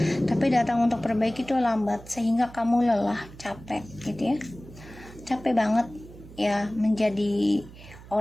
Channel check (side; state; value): right; noise; hum, 18 dB below the sound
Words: Tapi datang untuk perbaiki itu lambat, sehingga kamu lelah, capek gitu ya, capek banget ya menjadi